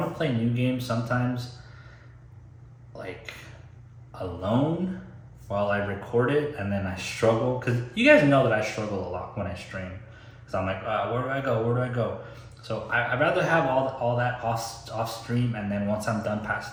to play new games sometimes like alone while I record it, and then I struggle, because you guys know that I struggle a lot when I stream, because I'm like, where do I go? So I'd rather have all that off stream, and then once I'm done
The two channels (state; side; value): identical; both; correlation 1.00